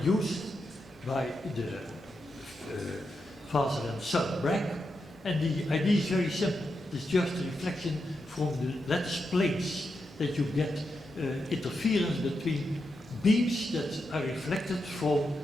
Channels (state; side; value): normal; both; correlation 0.86